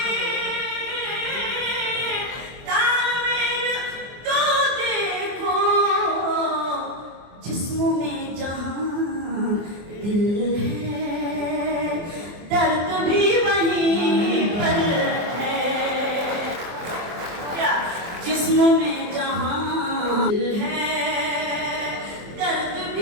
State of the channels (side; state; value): left; late; 24 ms